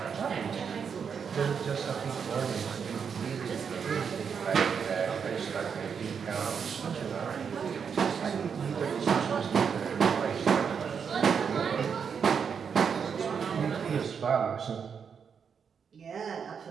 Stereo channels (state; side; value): quieter; left; 6.7 dB